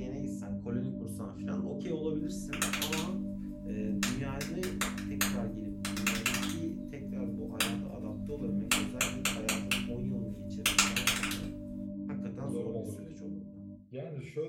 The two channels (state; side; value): identical; both; correlation 1.00